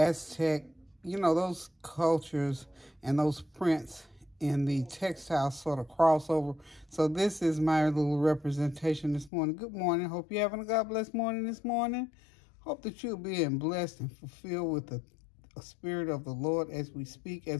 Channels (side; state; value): right; drops out; at 9.3 s